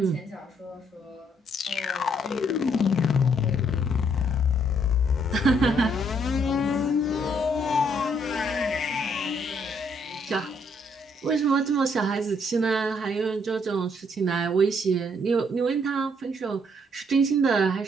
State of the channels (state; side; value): normal; both; correlation 0.69